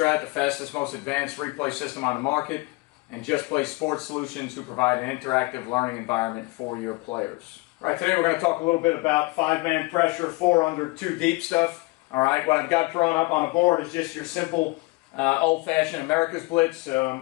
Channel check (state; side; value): quieter; right; 24.2 dB